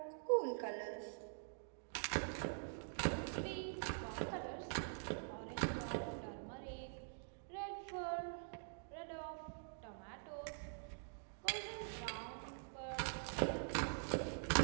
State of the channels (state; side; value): silent; left; digital silence